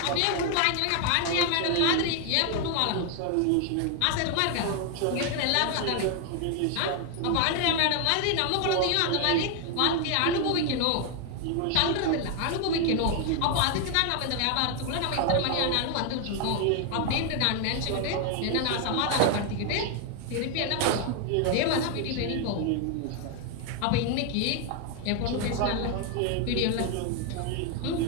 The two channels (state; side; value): different; both; correlation 0.00